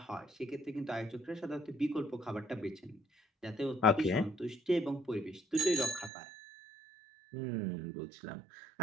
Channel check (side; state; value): left; drops out; at 6.1 s